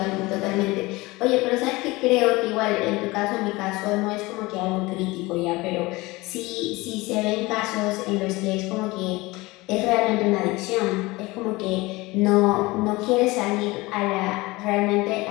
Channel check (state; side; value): quieter; right; 21.8 dB